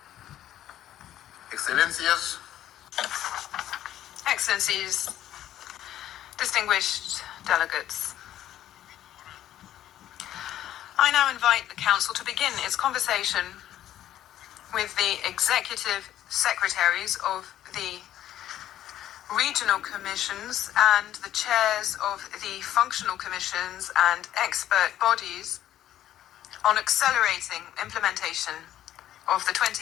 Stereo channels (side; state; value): right; quieter; 12.3 dB